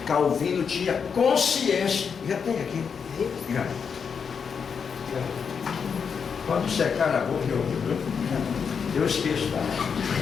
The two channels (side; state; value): right; quieter; 6.4 dB